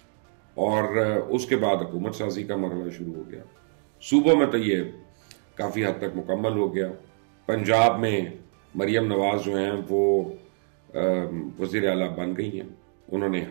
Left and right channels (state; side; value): silent; left; 55 dB below the other